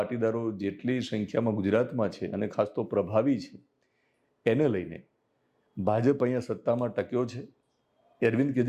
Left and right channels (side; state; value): both; identical; correlation 1.00